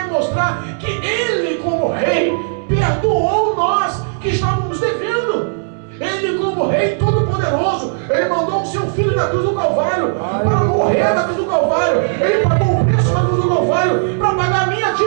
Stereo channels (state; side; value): silent; left; 69 dB below the other